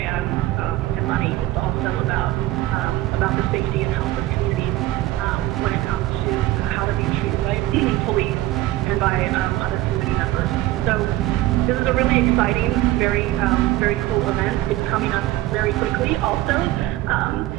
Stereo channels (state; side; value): quieter; left; 16.1 dB